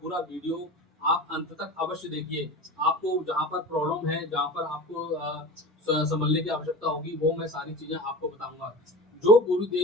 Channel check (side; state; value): both; normal; correlation 0.33